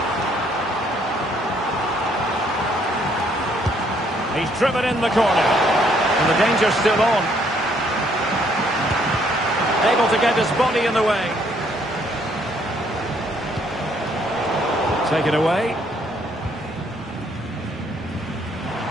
He's driven in the corner. And the danger's still on. Able to get his body in the way. Take it away.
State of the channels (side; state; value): both; normal; correlation 0.67